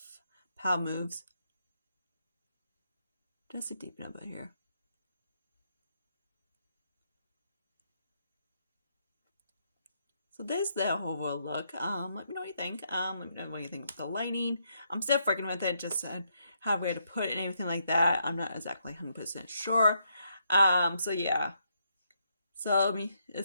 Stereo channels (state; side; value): inverted; both; correlation -0.77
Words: Power Moves just to deepen up here. So there's the overall look. Let me know what you think. Let me know what you think of the lighting. I'm still freaking with it, just how where to put it and everything like that. I'm not exactly 100% sure. So yeah. So